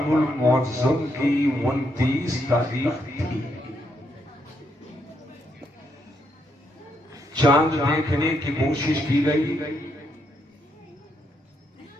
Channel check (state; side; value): normal; both; correlation 0.77